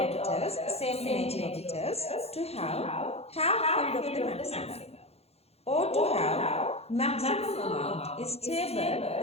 same energy orbitals, to have half filled of the maximum, or to have maximum amount is stable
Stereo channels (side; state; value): right; late; 0.30 ms